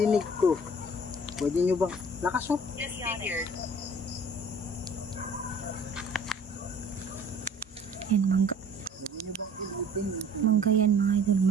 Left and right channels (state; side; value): normal; both; correlation 0.51